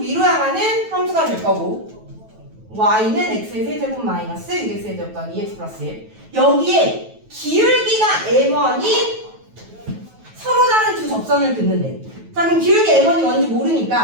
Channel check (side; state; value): left; late; 9.2 ms